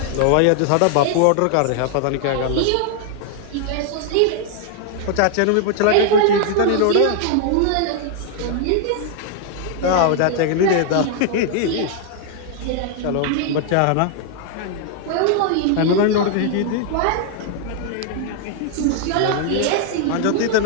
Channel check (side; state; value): both; different; correlation 0.00